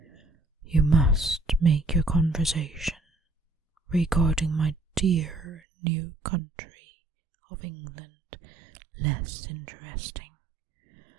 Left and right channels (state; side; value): drops out; left; at 5.6 s